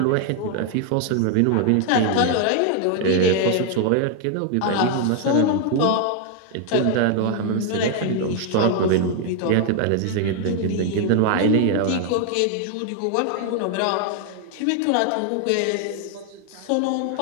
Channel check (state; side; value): different; both; correlation 0.00